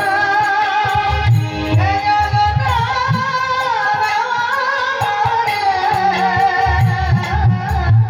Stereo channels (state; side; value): identical; both; correlation 1.00